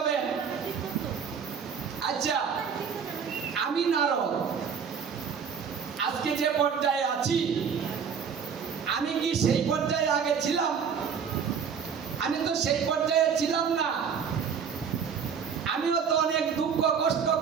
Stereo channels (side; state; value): left; quieter; 6.8 dB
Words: আচ্ছা, আমি নারদ আজকে যে পর্যায়ে আছি, আমি কি সেই পর্যায়ে আগে ছিলাম? আমি তো সেই পর্যায়ে ছিলাম না। আমিও তো অনেক দুঃখ কষ্ট